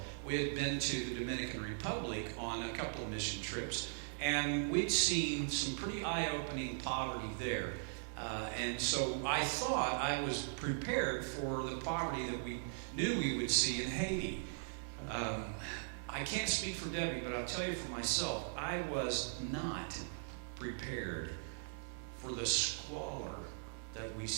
We had been to the Dominican Republic on a couple of mission trips, and we'd seen some pretty eye-opening poverty there. And so I thought I was prepared for the poverty that we knew we would see in Haiti. I can't speak for Debbie, but I'll tell you for myself, I was not prepared for the squalor that we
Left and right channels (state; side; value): silent; left; digital silence